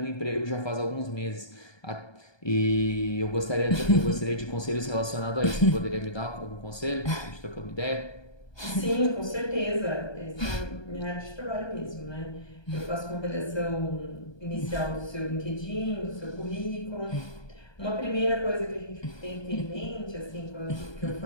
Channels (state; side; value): late; right; 1.2 ms